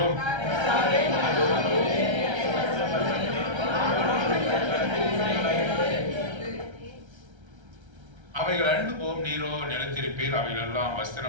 அவைகள் அழிந்து போம், நீரோ நிலைத்திருப்பீர். அவைகள் எல்லாம்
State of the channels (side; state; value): left; late; 1.3 ms